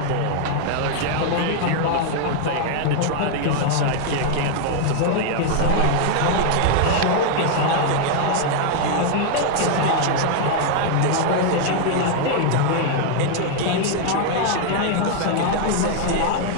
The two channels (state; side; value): different; both; correlation 0.00